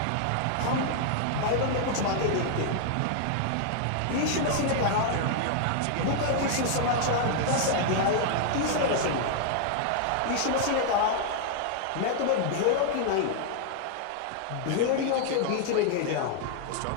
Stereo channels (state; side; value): different; both; correlation 0.00